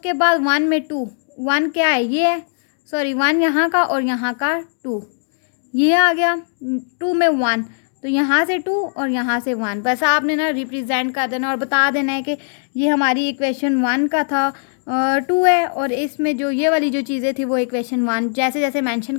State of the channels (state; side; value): silent; right; digital silence